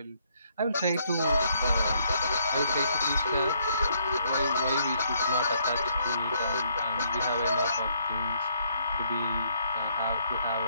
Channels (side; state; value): both; inverted; correlation -0.69